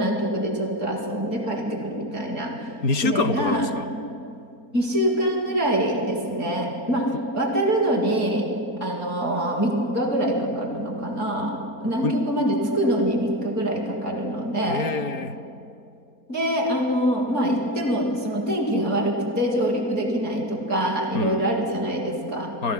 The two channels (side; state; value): right; late; 4.3 ms